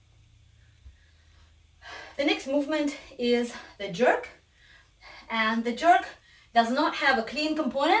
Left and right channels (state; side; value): identical; both; correlation 1.00